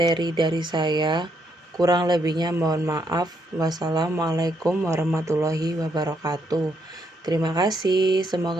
dari saya. Kurang lebihnya mohon maaf. Wassalamualaikum warahmatullahi wabarakatuh. Terima kasih,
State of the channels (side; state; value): both; normal; correlation 0.75